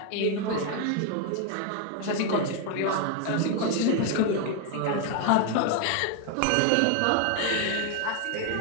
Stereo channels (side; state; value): both; different; correlation 0.01